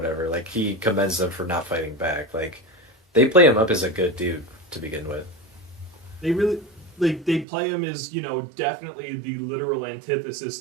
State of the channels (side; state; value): left; drops out; at 7.5 s